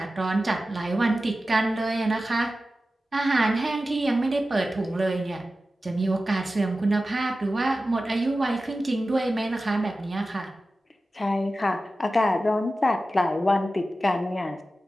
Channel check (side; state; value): both; normal; correlation 0.94